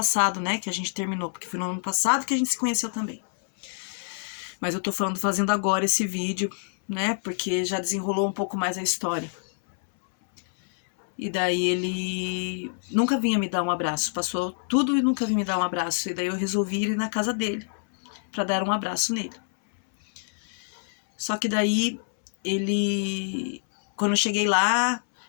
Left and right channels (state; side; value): silent; right; 61 dB below the other